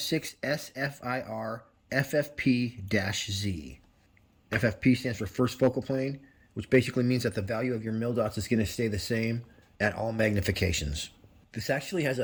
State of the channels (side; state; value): both; identical; correlation 1.00